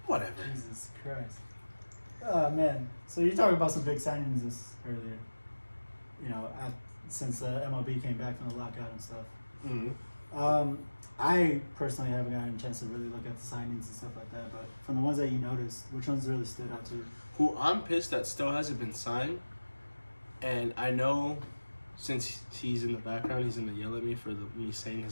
whatever. Jesus Christ. Oh man. So you're talking about some big signings this earlier. You know, since MLB came back from the lockout and stuff. Mm-hmm. I personally haven't gotten a chance to really look at the signings and stuff like that, but from the ones that you noticed, which ones really stood out to you? Who I'm pissed that still hasn't been signed, and I know since he's in the background, he's gonna yell at me for me saying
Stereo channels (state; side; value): inverted; both; correlation -1.00